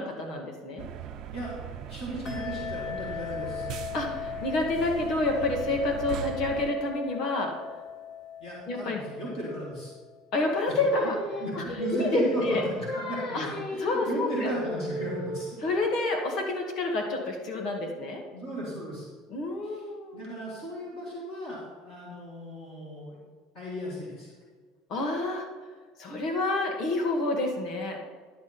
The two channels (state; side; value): normal; both; correlation 0.41